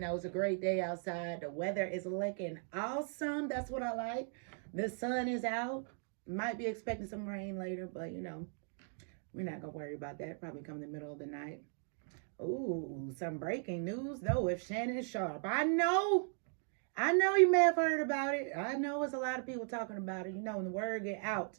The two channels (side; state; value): left; silent; 53 dB below the other